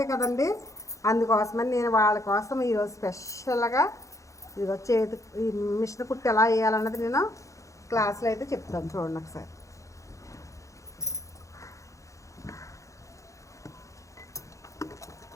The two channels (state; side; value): late; right; 0.15 ms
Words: కదండి. అందుకోసమని నేను వాళ్ళ కోసం ఈరోజు స్పెషల్గా ఇదిగో ఈ మిషన్ కుట్టి ఎలా వేయాలన్నది నేను క్లాస్లో అయితే చెప్తాను. చూడండి ఒకసారి.